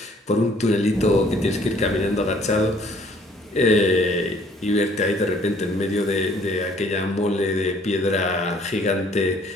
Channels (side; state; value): both; normal; correlation 0.59